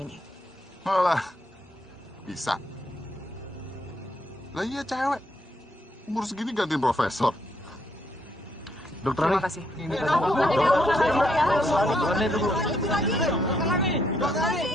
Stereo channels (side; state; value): both; normal; correlation 0.73